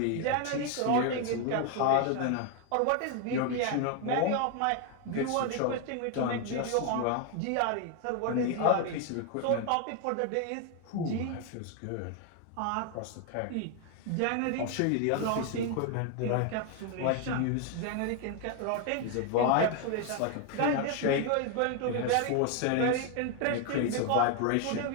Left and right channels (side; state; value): both; different; correlation 0.01